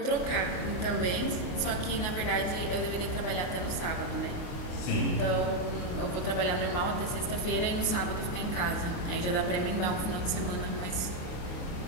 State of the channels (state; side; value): late; right; 28 ms